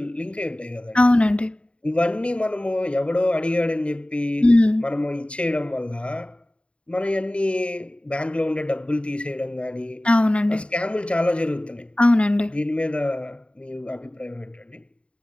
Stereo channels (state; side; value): late; right; 0.059 ms